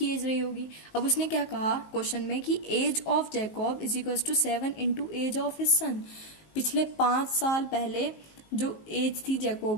एज रही होगी। अब उसने क्या कहा क्वेश्चन में कि age of Jacob is equal to 7 into age of his son. पिछले 5 साल पहले जो एज थी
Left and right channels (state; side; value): late; right; 19 ms